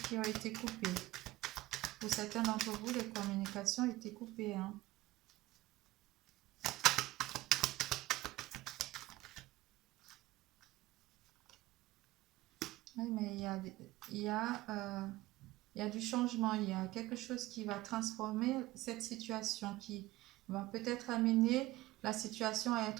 ont été coupées. Pour certains d'entre vous, les communications ont été coupées. Hein. Oui, mais il y a du changement. Il y a quelque chose qui va transformer cette situation, qui va peut-être amener la situation à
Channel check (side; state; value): left; quieter; 17.8 dB